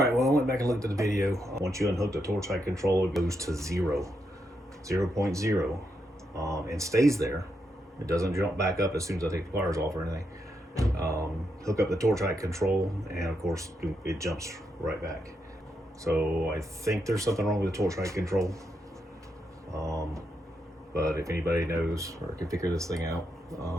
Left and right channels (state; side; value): normal; both; correlation 0.82